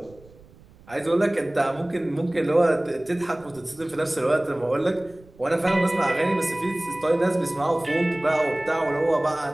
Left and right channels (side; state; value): right; noise; rumble, 25 dB below the sound